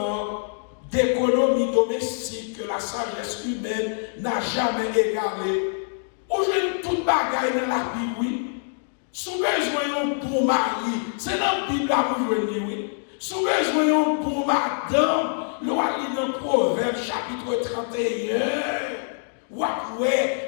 d'économie domestique que la sagesse humaine n'a jamais égalé. Aujourd'hui, toute bagaille dans la Bible, oui. Si vous besoin d'un bon mari, c'est dans la Bible que vous venez, oui. Si vous besoin d'un bon madame, vous allez dans le Proverbe chapitre 31. Ou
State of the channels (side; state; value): right; silent; digital silence